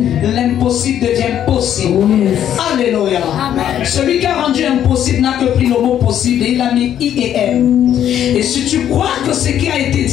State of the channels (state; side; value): quieter; right; 10.4 dB